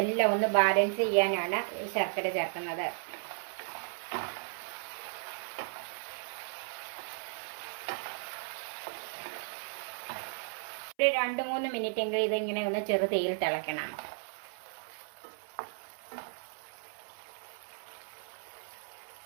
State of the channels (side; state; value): left; silent; 54 dB below the other